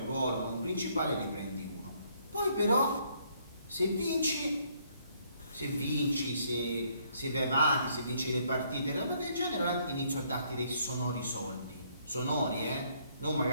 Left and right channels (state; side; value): inverted; both; correlation -0.68